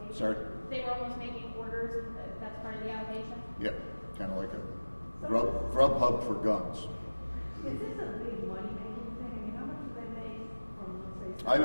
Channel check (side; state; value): both; inverted; correlation -1.00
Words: Sorry? They were almost making orders, and that's part of the allegation? Yeah, kind of like a grub hub for guns. Is this a big money-making thing? I mean, how much do they make from, let's